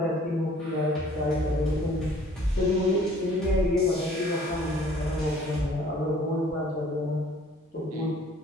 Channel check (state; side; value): normal; both; correlation 0.55